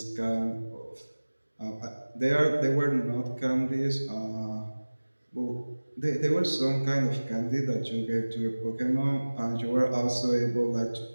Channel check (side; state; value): both; inverted; correlation -1.00